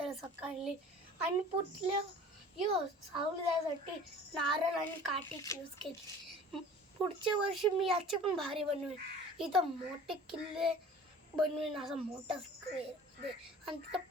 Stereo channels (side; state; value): both; normal; correlation 0.44